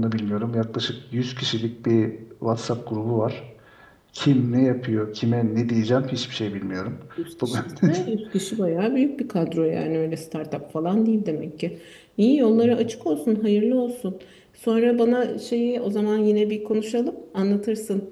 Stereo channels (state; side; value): identical; both; correlation 1.00